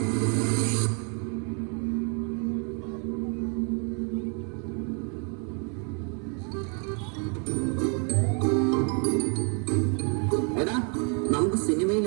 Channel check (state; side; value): quieter; left; 39.3 dB